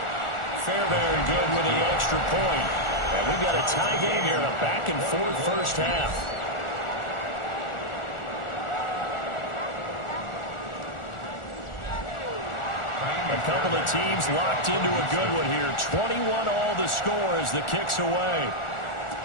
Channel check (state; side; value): late; right; 1.4 ms